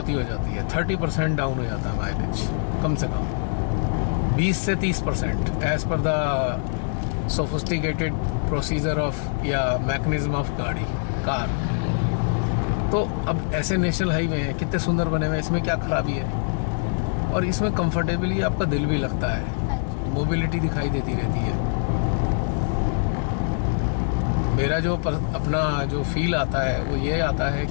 हो जाती है, 30% डाउन हो जाता है माइलेज, कम से कम 20 से 30% as per the sophisticated procedure of या मैकेनिज्म ऑफ कार। तो अब ऐसे नेशनल हाईवे हैं, कितने सुंदर बने हुए हैं, इसमें क्या खराबी है? और इसमें कंफर्टेबली आपका दिल भी लगता है, मोबिलिटी दिखाई देती रहती है। मेरा जो अपना जो फील आता है वो ये आता है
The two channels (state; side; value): silent; right; 58 dB below the other